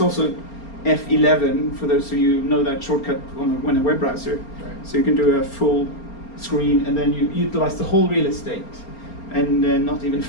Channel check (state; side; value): late; right; 4.3 ms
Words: also F11 for those of you who know that shortcut when a web browser. Right. So you can do a full screen and then you utilize the whole real estate. And not even